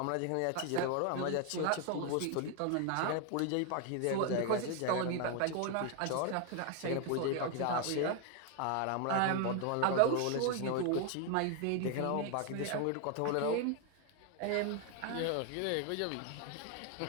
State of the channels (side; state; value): both; different; correlation 0.01